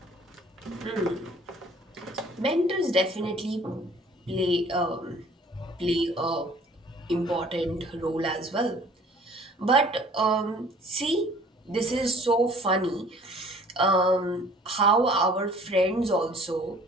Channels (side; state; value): both; normal; correlation 0.53